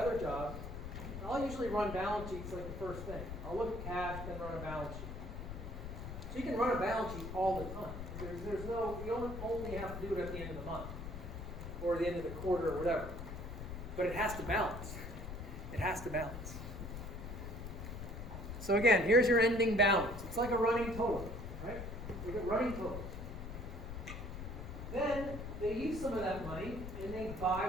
job, I'll usually run balance sheets like the first thing. I'll look at cash, then run a balance sheet. So you can run a balance sheet all the time. You only have to do it at the end of the month or the end of the quarter or whatever. But it has to balance. It has to balance. So again, here's your ending balance. It's like a running total, right? Look at running total. Then they use some of that money and they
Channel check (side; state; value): left; noise; rumble, 8 dB below the sound